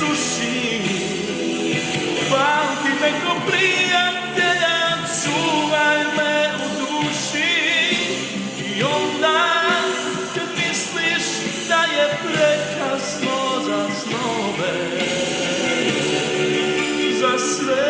pamti me ko plin.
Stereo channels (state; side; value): identical; both; correlation 1.00